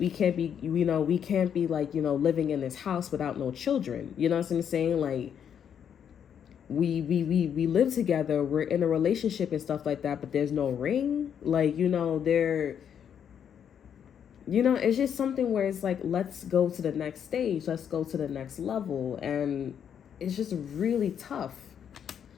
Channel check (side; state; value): right; quieter; 8.4 dB